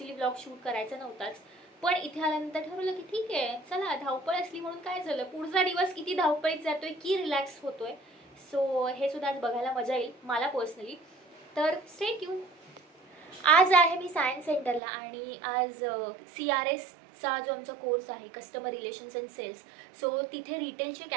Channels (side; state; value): left; drops out; at 14.8 s